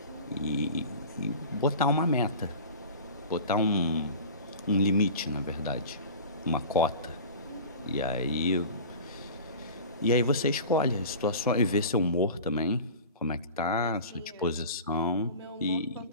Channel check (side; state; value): both; inverted; correlation -0.37